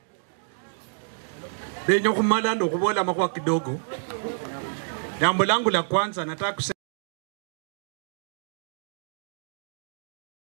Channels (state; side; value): silent; left; digital silence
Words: denyo kumala ndo kubola makwa kidogo. Jambo langu la kwanza nataka kusema